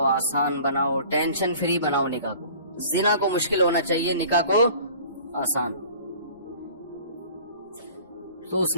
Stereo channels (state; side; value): inverted; both; correlation -0.47